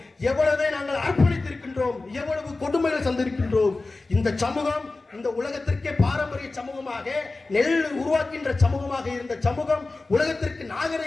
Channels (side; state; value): right; quieter; 3.4 dB